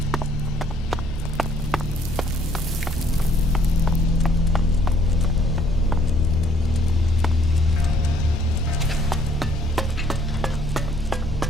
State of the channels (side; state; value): both; normal; correlation 0.64